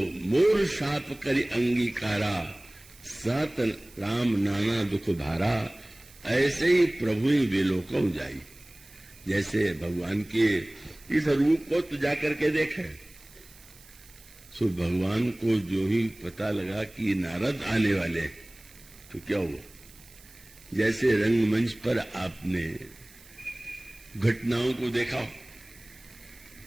मोर शाप करि अंगीकारा, सत राम नाना दुख भारा। ऐसे ही प्रभु ही विलोकम जाई। जैसे भगवान के इस रूप को तो जाकर के देखे, सो भगवान को जो ही पता लगा कि नारद आने वाले, तो क्या हुआ, जैसे रंगमंच पर आपने घटनाओं को देखा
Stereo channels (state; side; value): noise; right; hiss, 23 dB below the sound